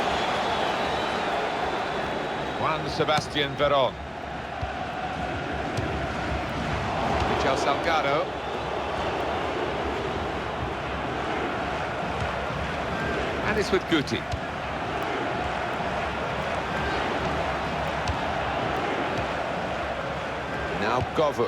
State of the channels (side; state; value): both; identical; correlation 1.00